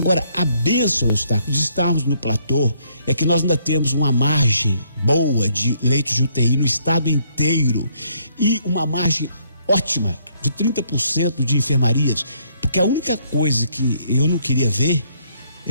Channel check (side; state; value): both; inverted; correlation -0.68